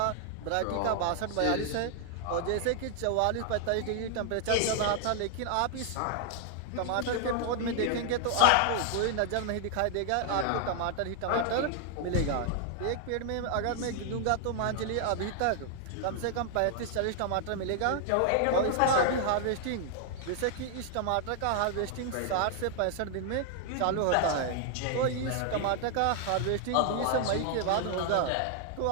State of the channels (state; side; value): different; both; correlation 0.00